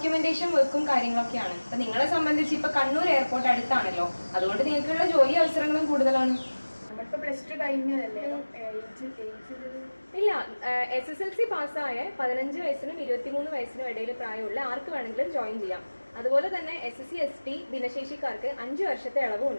വർക്കും കാര്യങ്ങളൊക്കെയാണ്. അപ്പൊ നിങ്ങളെ സംബന്ധിച്ച് ഇപ്പൊ കണ്ണൂർ എയർപോർട്ട് അടുത്താണല്ലോ, അതുകൊണ്ട് നിങ്ങൾക്കുള്ള ജോലി അവസരങ്ങളും കൂടുതലാണ്. നമ്മളിപ്പോ പ്ലസ് ടു കഴിഞ്ഞതല്ലേ? ഇല്ല, SSLC പാസ്സായ 15 വയസ്സിനും 23 വയസ്സിനും ഇടയിൽ പ്രായമുള്ള ആർക്ക് വേണമെങ്കിലും ജോയിൻ ചെയ്യാം. അതുപോലെ തന്നെ SSC ST ഭിന്നശേഷിക്കാർക്ക് 5 വർഷത്തെ ഇളവും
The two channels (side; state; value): both; inverted; correlation -1.00